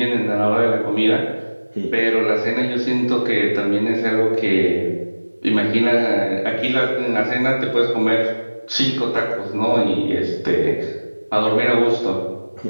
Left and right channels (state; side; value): inverted; both; correlation -1.00